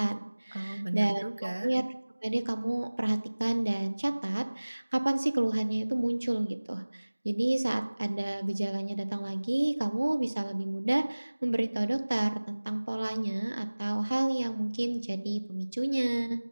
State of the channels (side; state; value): both; inverted; correlation -1.00